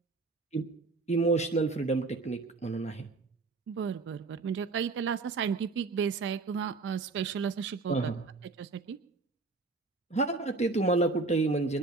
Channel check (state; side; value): quieter; left; 3.9 dB